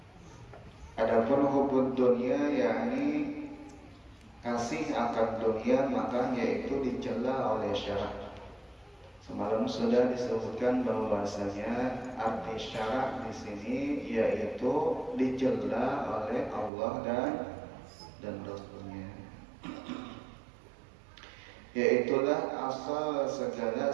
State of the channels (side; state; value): left; drops out; at 16.7 s